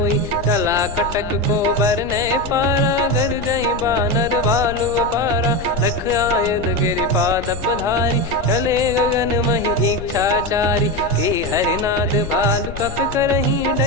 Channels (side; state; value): left; noise; rumble, 11 dB below the sound